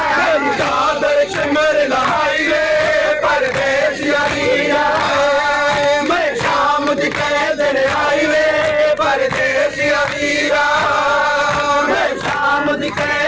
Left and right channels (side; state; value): left; noise; hum, 24 dB below the sound